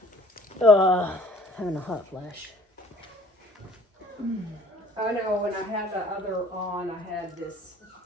Having a hot flash. I know when I had the other on, I had this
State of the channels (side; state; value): both; normal; correlation 0.54